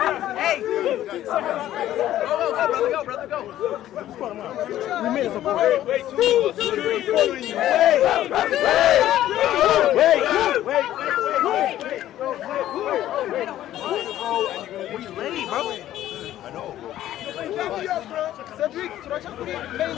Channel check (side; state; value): right; quieter; 13.0 dB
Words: Hey! Go, brother, go. We made it. Wait. What you ready, bro? I know. Cedric,